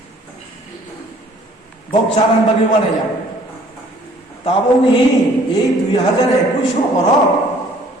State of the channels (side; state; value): both; normal; correlation 0.57